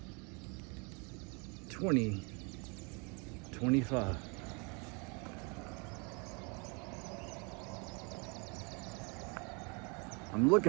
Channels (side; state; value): left; quieter; 32.6 dB